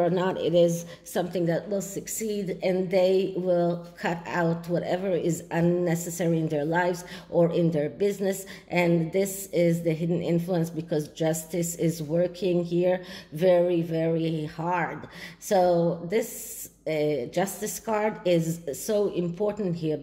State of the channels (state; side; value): identical; both; correlation 1.00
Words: not it is something that will succeed, and they will cut out whatever is unnecessary in their lives or in their business. And this is the hidden influence, because Justice is working here very, very hard. So this Justice card is so important here,